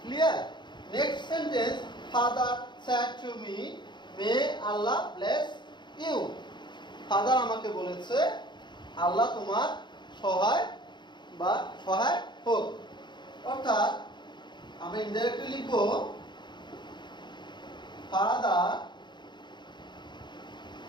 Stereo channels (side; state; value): right; late; 0.22 ms